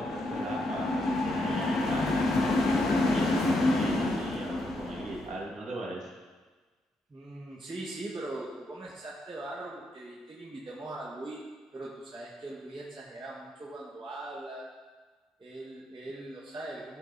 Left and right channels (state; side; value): normal; both; correlation 0.79